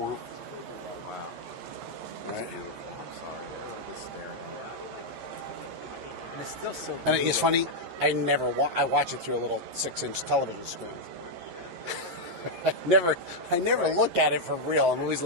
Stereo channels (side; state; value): left; late; 11 ms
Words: Wow. Right? I'm sorry. I was just staring at it. And it's still so And it's funny, I watch it through a little 6-inch television screen. I never look at it for real. I'm always